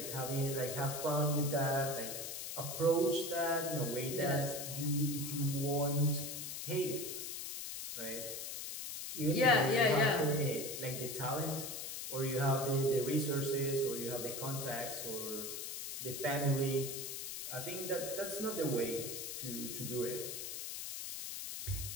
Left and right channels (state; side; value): noise; left; hiss, 6 dB below the sound